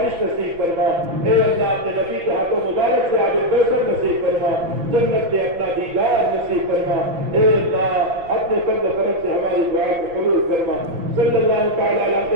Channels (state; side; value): late; left; 5.9 ms